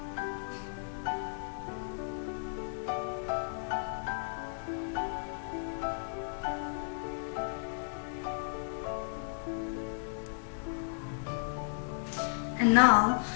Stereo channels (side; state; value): right; silent; digital silence